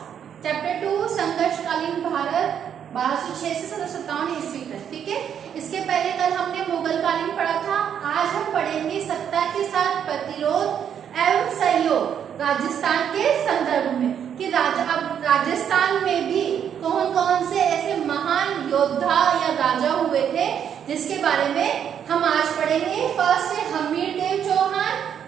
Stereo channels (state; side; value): quieter; left; 8.6 dB